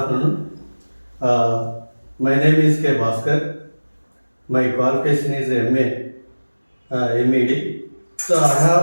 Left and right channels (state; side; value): inverted; both; correlation -1.00